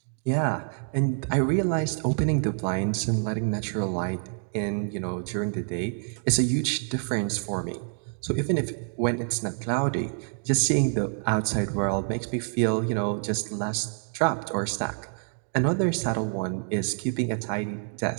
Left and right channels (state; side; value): silent; left; 60 dB below the other